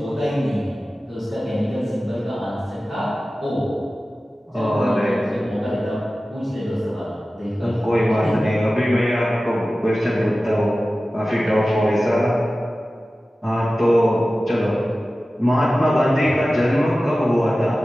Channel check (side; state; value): both; normal; correlation 0.95